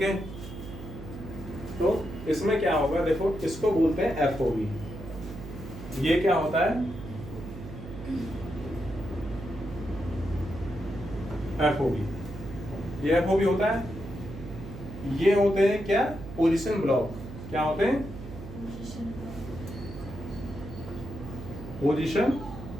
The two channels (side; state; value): right; noise; hum, 12 dB below the sound